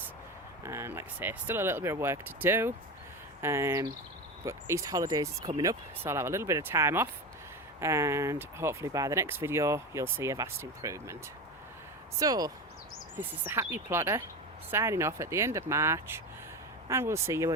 and like I say, still a little bit of work to do, but Easter holidays is coming up, so I'll have a little bit of time off, and hopefully by the next video you'll see a vast improvement. So this is the Happy Plotter signing off at the end of March. and we'll see you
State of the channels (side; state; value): both; normal; correlation 0.22